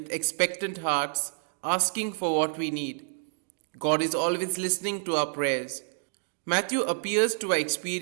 expectant hearts, asking for what we need. God is always listening to our prayers. Matthew appears to our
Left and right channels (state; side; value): silent; left; digital silence